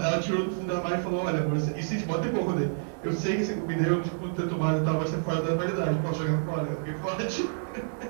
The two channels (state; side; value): silent; left; digital silence